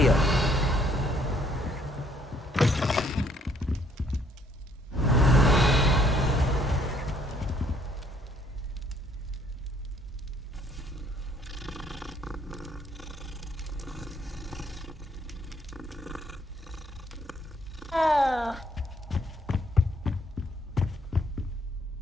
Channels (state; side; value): normal; both; correlation 0.66